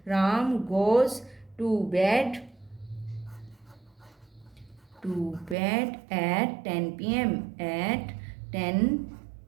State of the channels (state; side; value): drops out; left; at 5.6 s